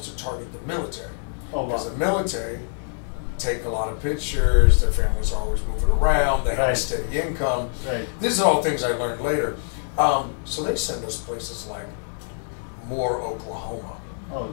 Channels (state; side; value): silent; right; digital silence